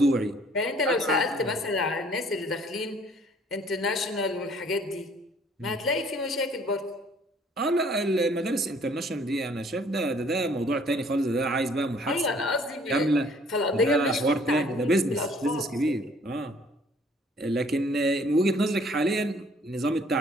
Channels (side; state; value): both; normal; correlation 0.58